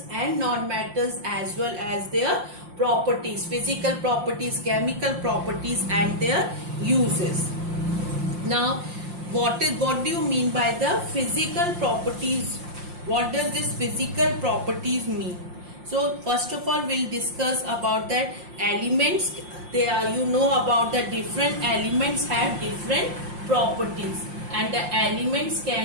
and non-metals as well as their properties, physical properties, chemical properties and their uses. Now what do you mean by the physical properties? What does this physical properties mean? So first of all we'll discuss about that elements. They are, you know about the different elements have different properties, and the elements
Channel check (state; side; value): late; left; 5.7 ms